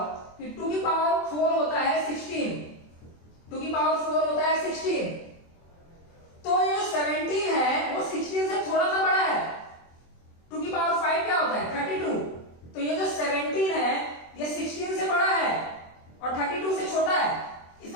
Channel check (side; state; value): right; late; 24 ms